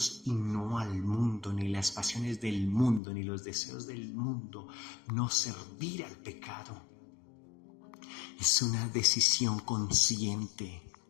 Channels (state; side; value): drops out; right; at 3.0 s